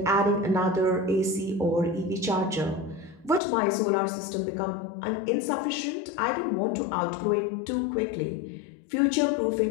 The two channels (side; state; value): right; drops out; at 3.4 s